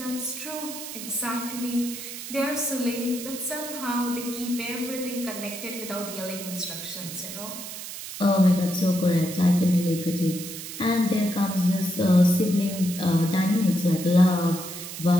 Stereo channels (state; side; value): noise; right; hiss, 10 dB below the sound